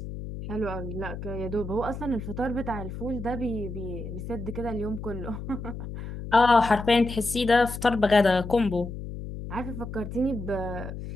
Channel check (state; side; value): noise; left; hum, 8 dB below the sound